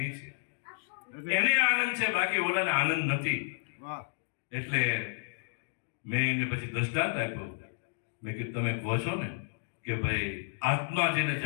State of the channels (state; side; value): silent; right; digital silence